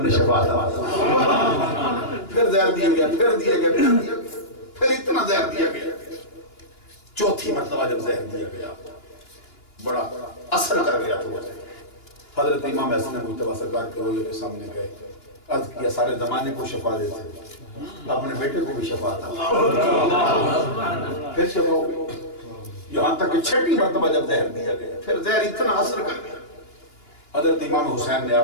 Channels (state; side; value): late; right; 2.9 ms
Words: نے شفا عطا، پھر زہر دیا گیا، پھر دیا گیا، پھر دیا گیا، پھر اتنا زہر دیا گیا، چوتھی مرتبہ جب زہر دیا گیا بڑا اثر کر گیا تو حضرت امام حسن مجتبی سرکار کے روزے کے سامنے گئے، عرض کیا سارے زمانے کو شفا دیتے اپنے بیٹے کو بھی شفا عطا، پھر شفا ہو گئی، یہاں تک کہ 6 مرتبہ جب زہر دیا گیا، پھر زہر اتنا اثر کر گیا، حضرت امام حسین نے